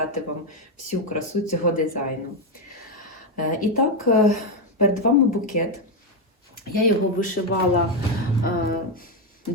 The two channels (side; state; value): both; normal; correlation 0.05